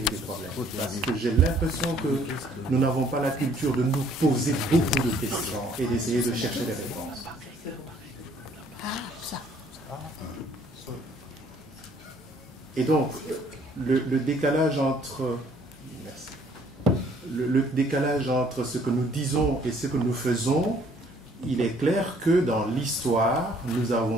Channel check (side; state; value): both; normal; correlation 0.61